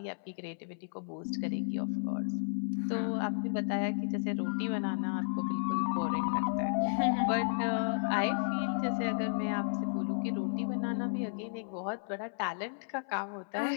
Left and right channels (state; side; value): silent; right; 56 dB below the other